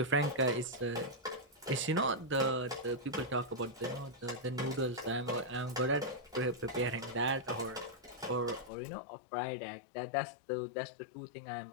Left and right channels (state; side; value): drops out; right; at 8.7 s